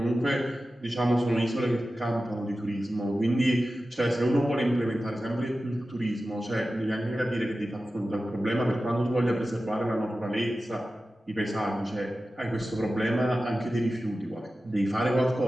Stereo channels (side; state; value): both; normal; correlation 0.94